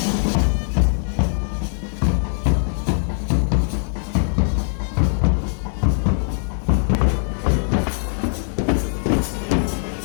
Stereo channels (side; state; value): right; silent; 65 dB below the other